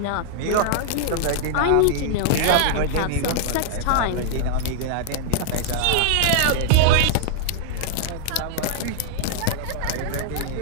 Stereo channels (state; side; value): different; both; correlation -0.01